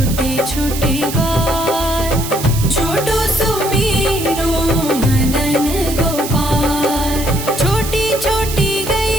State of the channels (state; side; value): noise; right; hiss, 8 dB below the sound